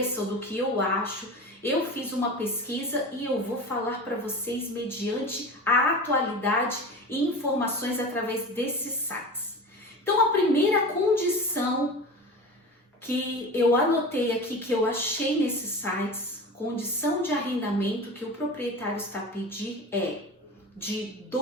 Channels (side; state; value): both; normal; correlation 0.32